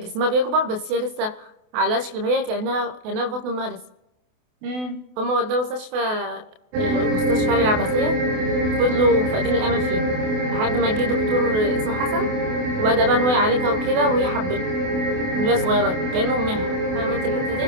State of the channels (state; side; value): late; left; 28 ms